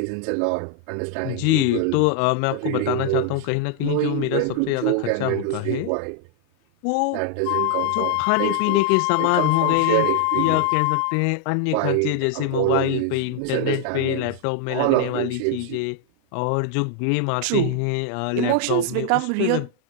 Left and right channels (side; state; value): both; different; correlation 0.00